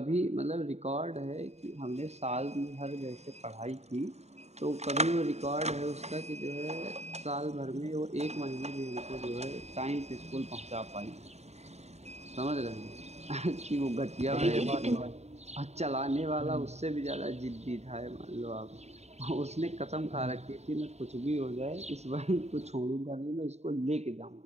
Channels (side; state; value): left; late; 0.32 ms